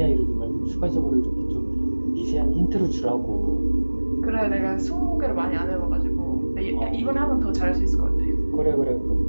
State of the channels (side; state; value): both; inverted; correlation -1.00